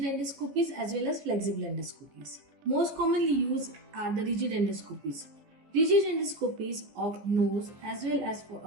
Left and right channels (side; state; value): left; late; 15 ms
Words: endoscopies as well as flexible endoscopies. Most commonly used are the rigid endoscopies. Rigid endoscopies of nose as well as